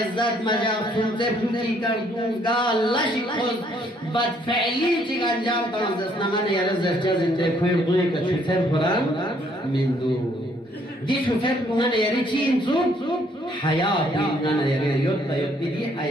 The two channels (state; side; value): normal; both; correlation 0.66